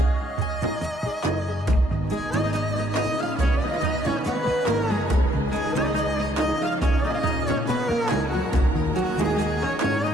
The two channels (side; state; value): both; normal; correlation 0.67